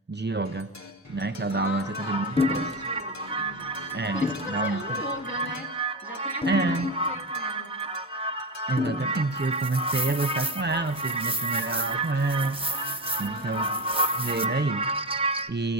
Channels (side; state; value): both; normal; correlation 0.20